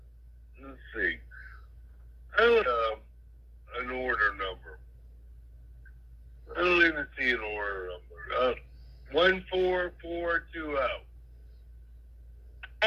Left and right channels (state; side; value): identical; both; correlation 1.00